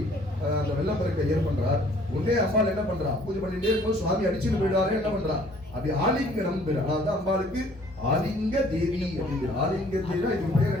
அந்த வெள்ளப்பெருக்கை ஏற்படுறார். உடனே அம்பாள் என்ன பண்றா, பூஜை பண்ணிட்டே இருக்கும் சுவாமி அடிச்சுட்டு போயிடுவாரு. என்ன பண்றா, அப்படி ஆலிங்கனம் பேர். அதாவது அம்பாளுக்கு ஆலிங்க தேவி அப்படிங்கிற ஆலிங்க தேவி. இது பேர்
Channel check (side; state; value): both; normal; correlation 0.57